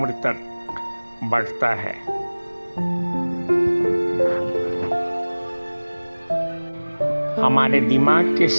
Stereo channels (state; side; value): inverted; both; correlation -1.00